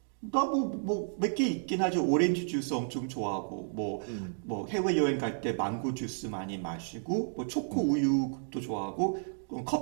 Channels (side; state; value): left; silent; digital silence